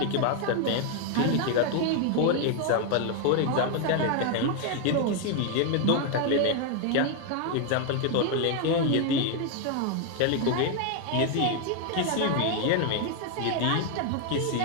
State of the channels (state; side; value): different; both; correlation 0.01